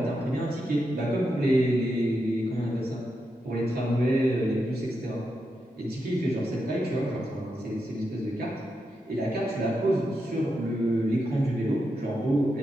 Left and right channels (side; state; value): both; normal; correlation 0.85